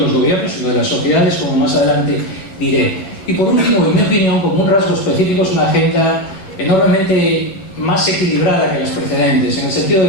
los gobiernos, sino de las sociedades, como más adelante diré. Y por último, en mi opinión, como un rasgo específico, es una agenda enormemente más equilibrada que las precedentes, en el sentido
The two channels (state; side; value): late; right; 10 ms